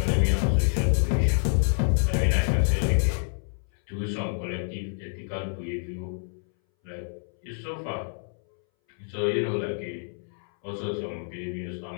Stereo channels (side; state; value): right; silent; 60 dB below the other